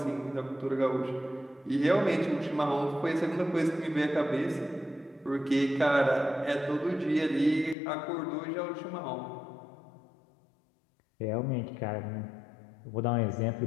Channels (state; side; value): drops out; right; at 7.8 s